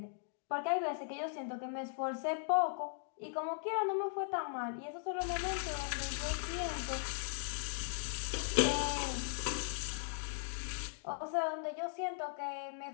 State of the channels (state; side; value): silent; right; digital silence